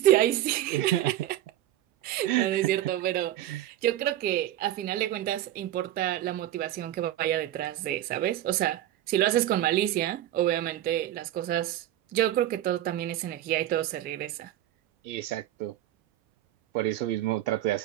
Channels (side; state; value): left; quieter; 13.1 dB